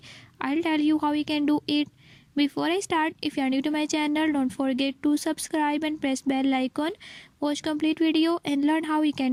I'll tell you how you can do it. Before I start, if you are new to my channel, don't forget to subscribe and press bell icon. Watch complete video and learn how you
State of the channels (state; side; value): identical; both; correlation 1.00